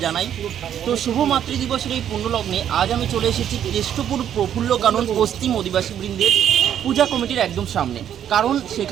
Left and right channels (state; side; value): quieter; left; 9.9 dB